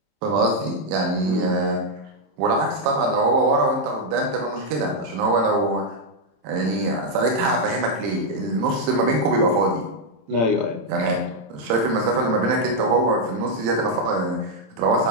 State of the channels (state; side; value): late; left; 27 ms